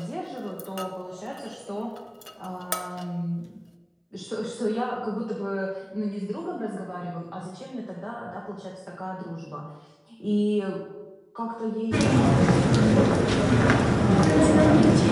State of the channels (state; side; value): identical; both; correlation 1.00